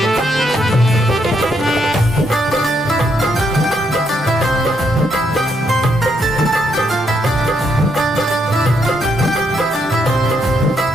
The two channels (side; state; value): both; normal; correlation 0.76